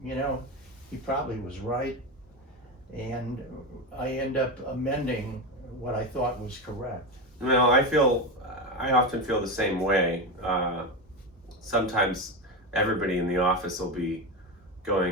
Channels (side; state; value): both; normal; correlation 0.17